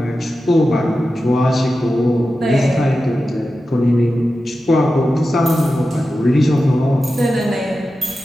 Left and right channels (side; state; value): both; normal; correlation 0.92